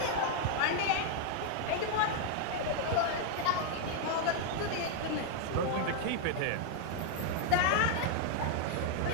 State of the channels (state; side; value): different; both; correlation 0.00